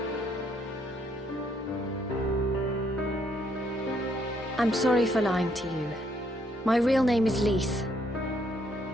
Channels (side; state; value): both; normal; correlation 0.70